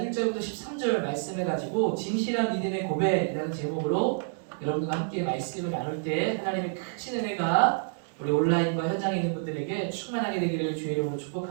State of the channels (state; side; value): silent; left; digital silence